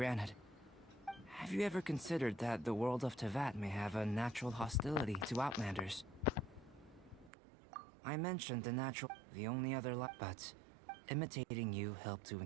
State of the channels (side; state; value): left; drops out; at 7.3 s